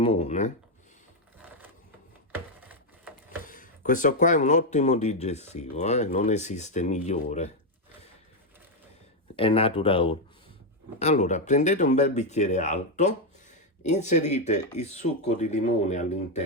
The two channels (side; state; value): both; normal; correlation 0.03